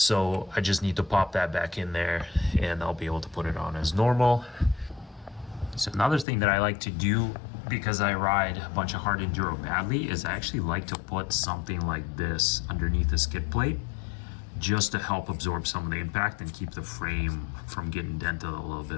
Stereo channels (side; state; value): right; drops out; at 6.2 s